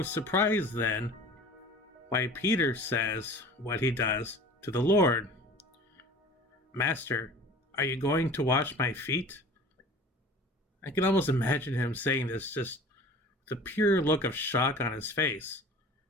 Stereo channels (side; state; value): both; normal; correlation 0.42